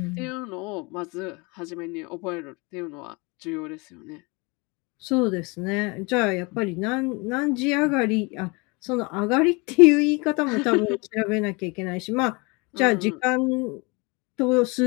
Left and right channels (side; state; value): right; quieter; 27.9 dB